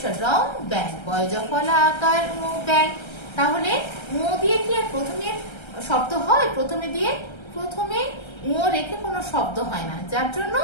রং ব্যাং, বয় জফলা আকার ও ব্যাং। তাহলে ও দিয়ে কি আর প্রথমে শব্দ হয়? প্রথমে ও রেখে কোনো শব্দ হয় না, যার জন্য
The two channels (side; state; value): right; late; 1.3 ms